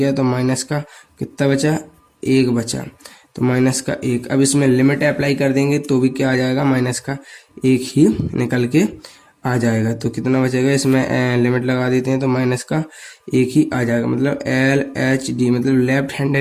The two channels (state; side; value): identical; both; correlation 1.00